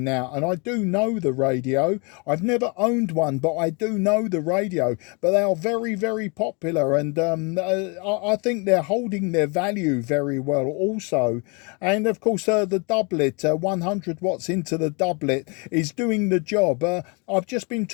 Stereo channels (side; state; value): right; quieter; 32.2 dB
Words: and I do know the radio. I've never owned one, but I do know the radio. But they are very, very popular, and I think they're holding their value very well also. And of course, the doublet, 100 watts into the doublet, is doing the job. I've just been